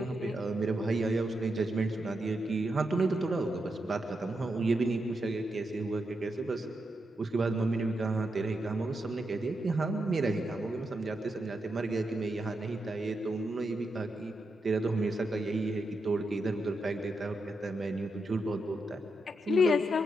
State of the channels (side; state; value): both; normal; correlation 0.85